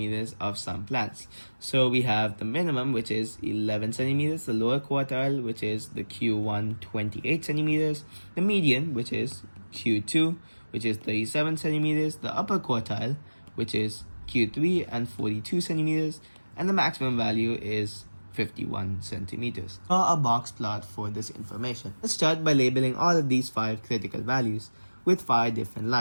of some plants. So we have the minimum, which is 11 centimeters, the lower quartile, which is the Q1 28 centimeters, the median, which is Q2, which is 37 centimeters, the upper quartile, which is Q3 and 42 centimeters, and the maximum value is 51 centimeters. Draw a box plot for this information. Let's start by labeling all of these 5 critical values with 5 different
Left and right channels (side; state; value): both; inverted; correlation -1.00